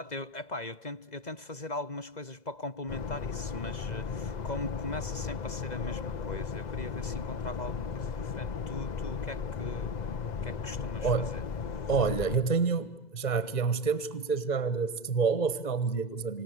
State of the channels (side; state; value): right; late; 2.0 ms